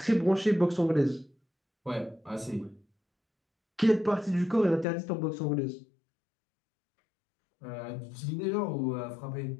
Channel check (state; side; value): drops out; right; at 4.9 s